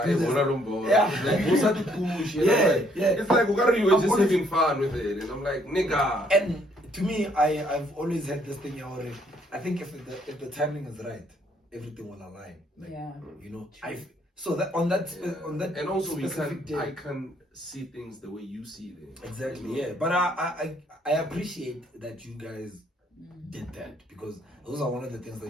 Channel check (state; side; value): normal; both; correlation 0.67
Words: do this. Yeah, it's like, what's that to push? You know, it's like, you were just having fun with it. And I'm like, nigga. And to me, I've always had this thing already. I think if the timing is right, everything will align. Like, you know, so that on that and also I I can see things the way you see them. Exactly, yeah. But I appreciate that you guys did that, because those are one of the things